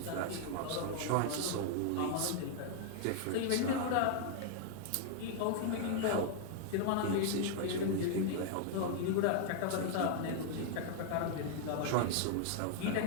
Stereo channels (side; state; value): both; different; correlation 0.00